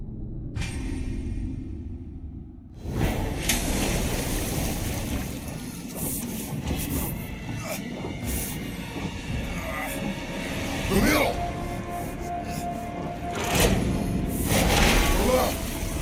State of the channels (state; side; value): identical; both; correlation 1.00